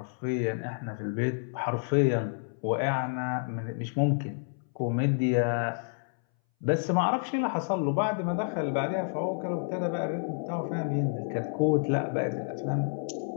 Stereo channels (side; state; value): right; silent; 58 dB below the other